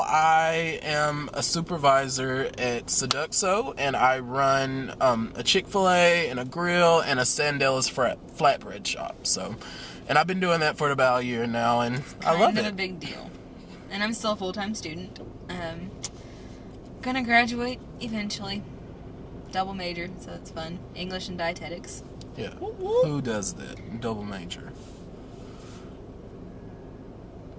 I am a supervisor at Seduxo, and I run a Chick-fil-A and a grill and a Sandella's flatbread shop. So, and I've been doing that for about a year now, and I love it. Kind of a big deal. And I'm still a full-time student. Gonna graduate eventually. Double major, so it's fun. English and dietetics. Yeah. Who does that? Double major.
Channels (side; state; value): both; identical; correlation 1.00